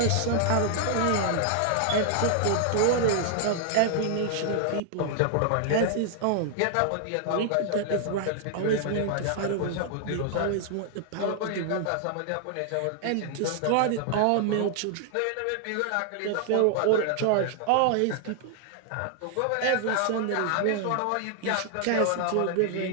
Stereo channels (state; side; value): different; both; correlation 0.00